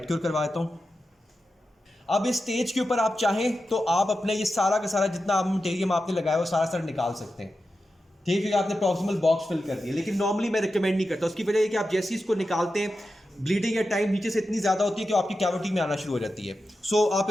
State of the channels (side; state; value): both; normal; correlation 0.91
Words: क्योर करवा देता हूँ। अब इस स्टेज के ऊपर आप चाहें तो आप अपने ये सारा का सारा जितना आप मटेरियल आपने लगाया वो सारा सारा निकाल सकते हैं, ठीक है। आपने प्रॉक्सिमल बॉक्स फिल कर दिया, लेकिन नॉर्मली मैं रिकमेंड नहीं करता। उसकी वजह है कि आप जैसे ही इसको निकालते हैं ब्लीडिंग या टाइम नीचे से इतनी ज़्यादा होती है कि आपकी कैविटी में आना शुरू हो जाती है। सो आप